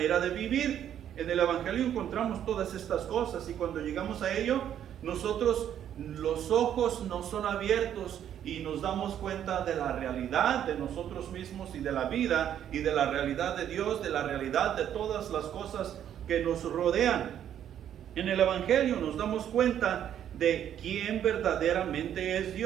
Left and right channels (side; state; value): left; quieter; 10.1 dB